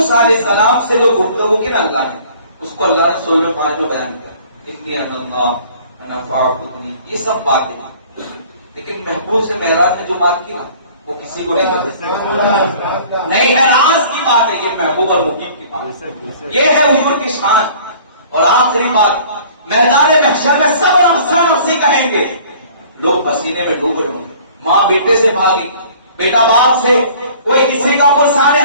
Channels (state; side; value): inverted; both; correlation -0.51